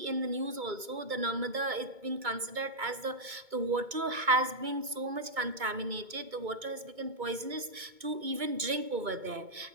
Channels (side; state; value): left; late; 2.2 ms